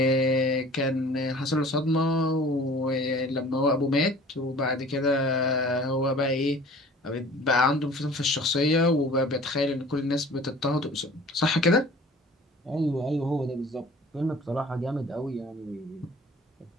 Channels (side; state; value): both; normal; correlation 0.47